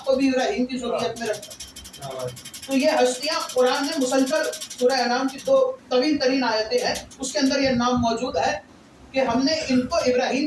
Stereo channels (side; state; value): both; identical; correlation 1.00